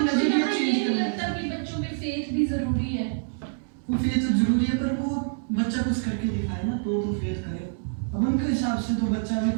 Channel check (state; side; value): silent; left; digital silence